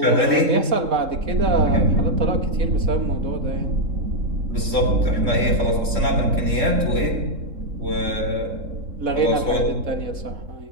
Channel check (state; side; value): late; left; 3.7 ms